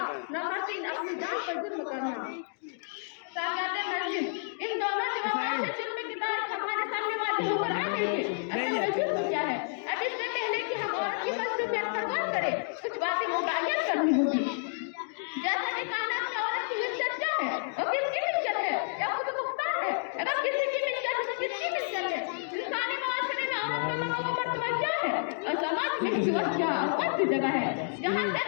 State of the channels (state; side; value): silent; right; digital silence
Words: नंबर 3 अपनी जान पर जुल्म करना। सागाते मस्जिद इन दोनों जवाबों से जुल्म की तारीफ हमारे सामने वाजिब हो रहा है। जुल्म क्या है? अब इससे पहले कि हम औरत की मसलूबियत पर गौर करें कुछ बातें मुतय्यन करनी होगी। जैसा कि कायनात में औरत की इज्जत क्या है, वो किसकी मिल्कियत है या खुद मुख्तार है? अगर किसी की मिल्कियत है तो किसकी मिल्कियत है? इंसानी माशरे में औरत का मकाम मर्तबा क्या है और समाज में इसकी क्या कौन सी जगह है जहाँ से